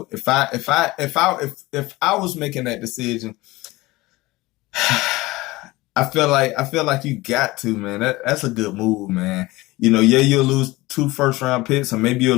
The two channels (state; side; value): quieter; right; 20.3 dB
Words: I was making that decision, I feel like you got to, man. That's a good move, man. You'll lose 2 first-round picks, or maybe